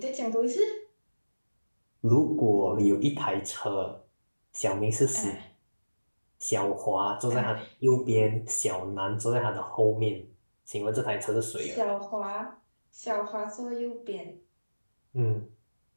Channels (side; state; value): both; inverted; correlation -1.00